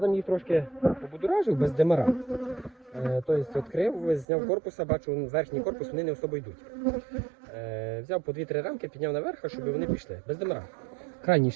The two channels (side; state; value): left; drops out; at 4.2 s